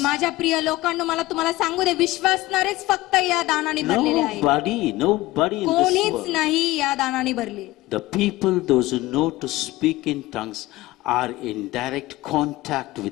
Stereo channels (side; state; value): right; quieter; 18.5 dB